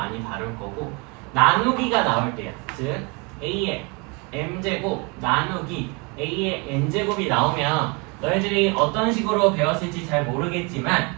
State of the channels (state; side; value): quieter; left; 30.3 dB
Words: 다룰 거고, 나누기가 나올 때야. 즉 A의 m제곱 나누기 A의 n제곱이 나오면 너희들이 어떤 식으로 배웠을지 잘 모르겠지만